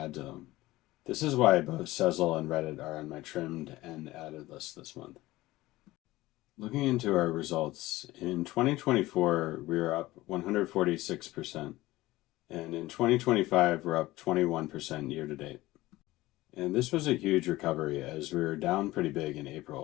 to them. This is why both Sezzle and Reddit are on my trimmed and added list this month. Looking into our results, in 2024, we were up 146%, and in 2025, we're up 21% year to date. And this was a huge recovery as we were down pretty big in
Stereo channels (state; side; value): quieter; right; 18.1 dB